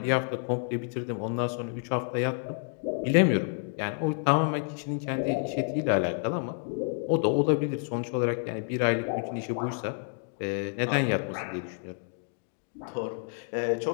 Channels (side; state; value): right; silent; 58 dB below the other